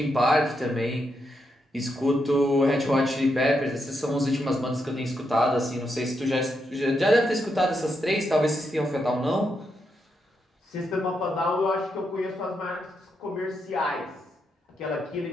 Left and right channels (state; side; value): normal; both; correlation 0.82